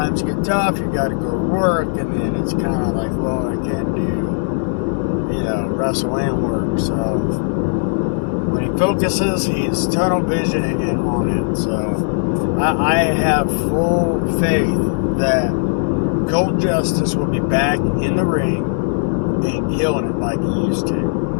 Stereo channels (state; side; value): silent; right; 65 dB below the other